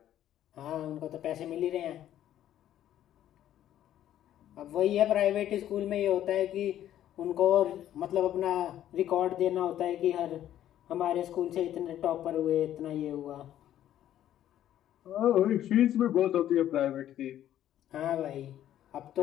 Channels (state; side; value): quieter; right; 11.7 dB